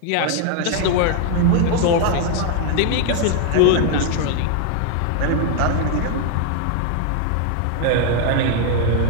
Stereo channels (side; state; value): both; different; correlation 0.00